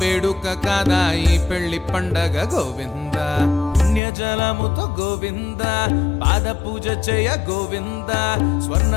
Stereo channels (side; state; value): right; drops out; at 4.0 s